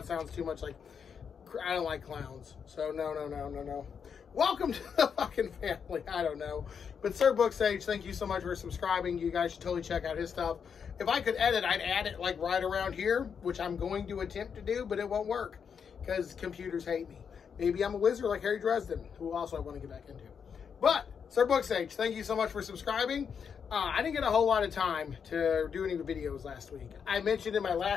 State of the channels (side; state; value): right; quieter; 6.8 dB